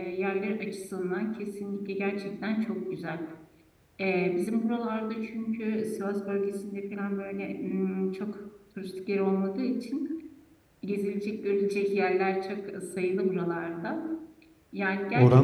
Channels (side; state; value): both; identical; correlation 1.00